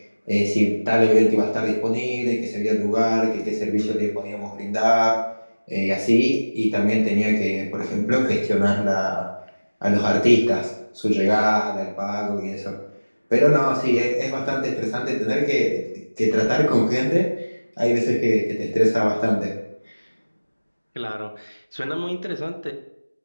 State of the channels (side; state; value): both; inverted; correlation -1.00